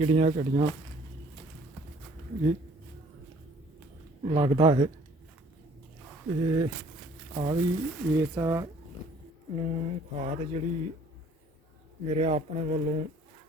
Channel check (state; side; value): normal; both; correlation 0.57